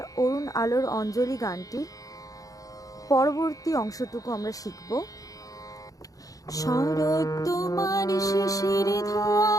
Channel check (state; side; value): late; right; 0.17 ms